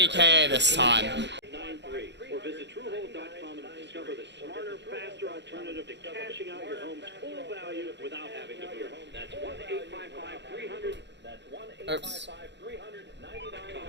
this time. 93, or visit TrueHold.com and discover the smarter, faster alternative to cashing out your home's full value without having to move. That's 1-855-300. That's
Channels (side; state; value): left; late; 0.51 ms